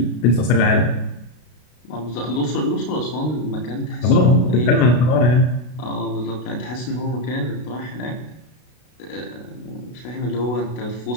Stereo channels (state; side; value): late; right; 32 ms